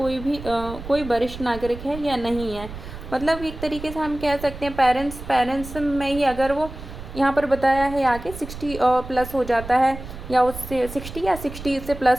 वरिष्ठ नागरिक है या नहीं है। मतलब एक तरीके से हम कह सकते हैं पेरेंट्स में ही अगर वो यहाँ पर बताया है आगे 60 प्लस हो जाता है, या उससे 60 या 60 से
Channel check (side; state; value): right; noise; rumble, 12 dB below the sound